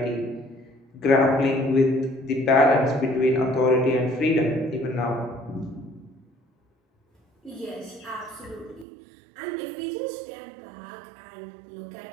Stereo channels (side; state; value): left; drops out; at 8.8 s